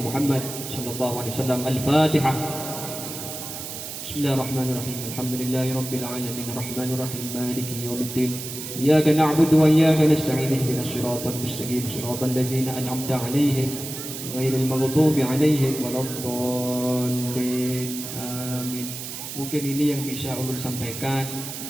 Muhammad sallallahu alaihi wasallam. Al-Fatihah. Bismillahirrahmanirrahim. Alhamdulillahi rabbil alamin arrahmanir rahim maliki yaumiddin. Iyyaka na'budu wa iyyaka nasta'in ihdinas siratal mustaqim siratal ladzina an'amta 'alaihim ghairil maghdubi 'alaihim waladdallin. Amin. Mungkin ini yang bisa ulun sampaikan.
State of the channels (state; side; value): noise; right; hiss, 8 dB below the sound